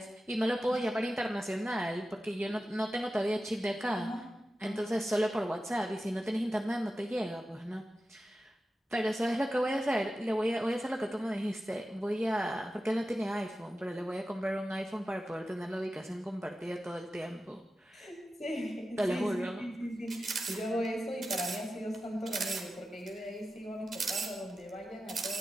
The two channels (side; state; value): both; normal; correlation 0.93